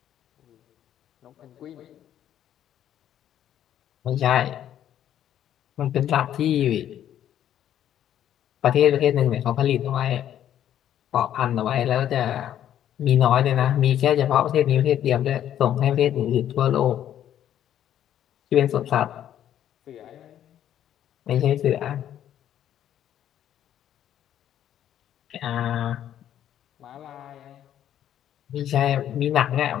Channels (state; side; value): quieter; right; 10.8 dB